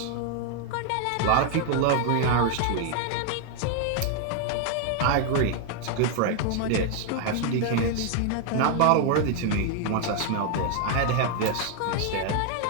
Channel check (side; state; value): both; different; correlation 0.00